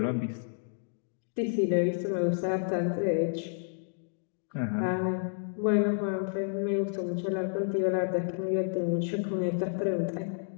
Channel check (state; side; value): silent; right; digital silence